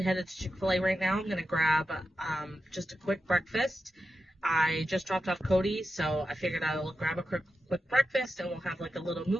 headed to Chick-fil-A right now. I'm going to grab just a quick breakfast. I just dropped off Cody, so I figured I'll grab a quick breakfast and we'll have like a little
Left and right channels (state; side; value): normal; both; correlation 0.90